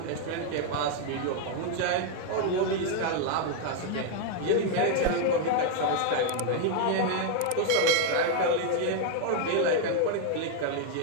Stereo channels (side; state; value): both; different; correlation 0.00